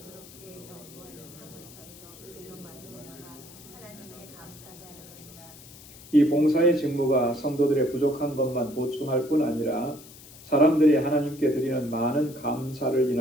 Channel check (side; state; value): left; noise; hiss, 19 dB below the sound